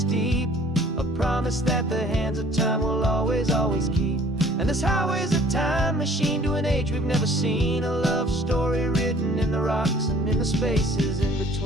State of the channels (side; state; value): both; normal; correlation 0.54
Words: deep, a promise that the hands of time will always, always keep. And this highway's a time machine to an age we've never seen, a love story written in the rocks and in the spaces in